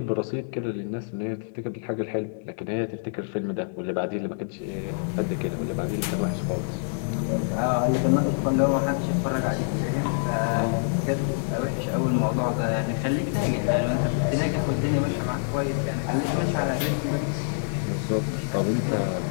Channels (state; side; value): silent; right; 61 dB below the other